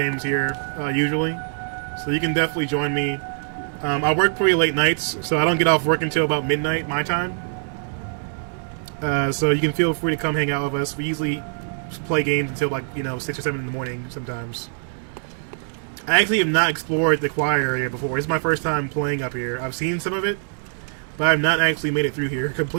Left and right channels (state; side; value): silent; left; digital silence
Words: here usually, so you can definitely join me. I work pretty late nights, so I don't get off work until about midnight my time. So you can feel free to come hang out with us. We usually play games until 6 or 7 in the morning sometimes. I actually have not explored the quiet area before. It's my first time playing up here. I've seen some of it, but I've not actually made it through here